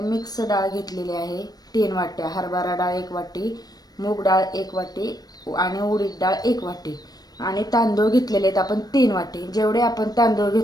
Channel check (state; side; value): late; right; 0.19 ms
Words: मिक्स डाळ घेतलेली आहे 3 वाट्या, हरभरा डाळ 1 वाटी, मूग डाळ 1 वाटी आणि उडीद डाळ 1 वाटी आणि तांदूळ घेतलेले आहेत आपण 3 वाटी। जेवढे आपण तांदूळ